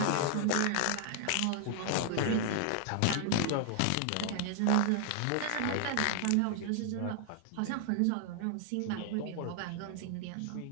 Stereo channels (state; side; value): different; both; correlation 0.00